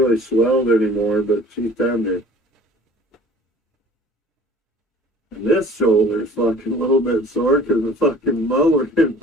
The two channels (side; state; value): both; normal; correlation 0.48